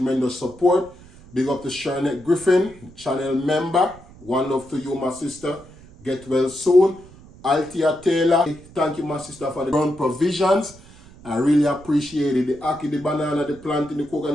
support. Big up to Charlotte Griffin, channel member. One love to you, my sister. Get well soon. Althea Taylor, thank you, my sister, for the ground provisions. I really appreciate it. The ackee, the banana, the plantain, the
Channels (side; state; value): right; noise; rumble, 22 dB below the sound